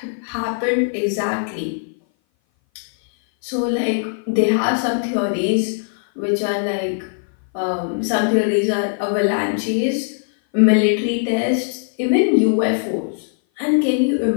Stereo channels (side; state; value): right; silent; 58 dB below the other